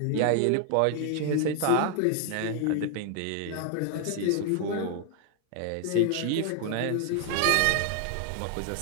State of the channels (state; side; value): different; both; correlation 0.00